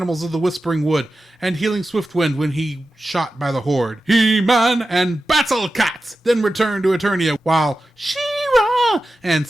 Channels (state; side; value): normal; both; correlation 0.92